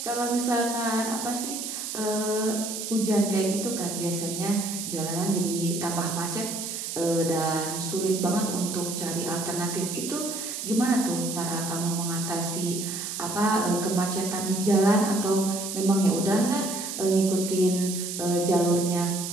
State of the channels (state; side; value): noise; right; hiss, 5 dB below the sound